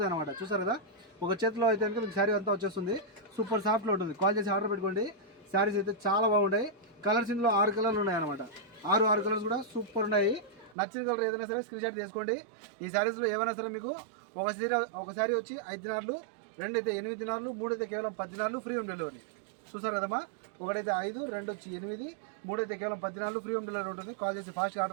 అనమాట. చూసారు కదా, ఒక చేతిలో అయితే కనుక మీకు శారీ అంతా వచ్చేస్తుంది. సూపర్ సాఫ్ట్లో ఉంటుంది. కాల్ చేసి ఆర్డర్ పెట్టుకోండి. శారీస్ అయితే చాలా బాగుంటాయి. కలర్స్ ఇందులో 6 కలర్లు ఉన్నాయి అనమాట. 6 కలర్స్ కూడా సూపర్ ఉన్నాయి. నచ్చిన కలర్ ఏదైనా సరే స్క్రీన్ షాట్ తీసుకోండి. ఈ శారీస్లో ఏమైనా సరే మీకు ఒక శారీ వచ్చి 5 దినార్లు, 2 అయితే 8 దినార్లు, 3 అయితే కేవలం 10 దినార్లు, ఫ్రీ హోమ్ డెలివరీ. చూసారు కదమ్మా, 1 అయితే 5, 2 వచ్చి 8, 3 అయితే కేవలం 10 దినార్లు, ఫ్రీ హోమ్ డెలివరీ ఉంటుంది. కాల్ చేసి ఫాస్ట్గా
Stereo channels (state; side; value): drops out; left; at 10.8 s